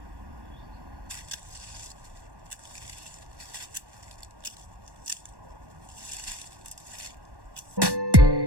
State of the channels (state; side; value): late; left; 1.1 ms